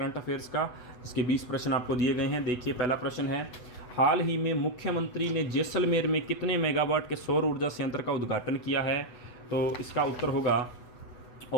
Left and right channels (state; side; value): late; right; 8.1 ms